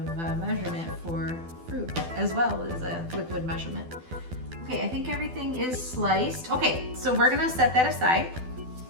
measurement for fruit as well as a liquid measurement. Okay, I think everything is sliced. Okay, so we're gonna set that aside.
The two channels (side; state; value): left; late; 12 ms